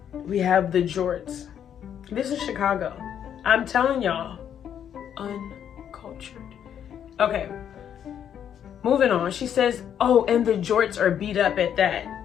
we have the jorts. This is Chicago. I'm telling y'all, uncultured. Okay, moving on. She says, oh, and the jorts are beat up at that.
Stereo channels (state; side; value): quieter; right; 9.1 dB